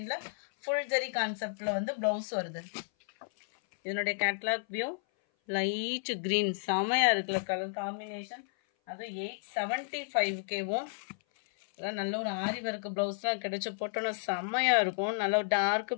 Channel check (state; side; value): silent; right; 56 dB below the other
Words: ஃபுல் ஜெரி கான்செப்ட்ல வந்து பிளவுஸ் வருது. இதனுடைய கேட்லாக் வியூ லைட் கிரீன் செமையா இருக்குல்ல கலர் காம்பினேஷன். அது 875வும் நல்ல ஒரு ஆரி ஒர்க் பிளவுஸ்லாம் கிடைச்சு போட்டோன்னா செம்மையா இருக்கும். நல்ல ஒரு dark